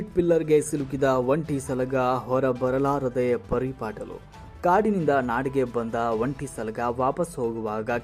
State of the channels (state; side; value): identical; both; correlation 1.00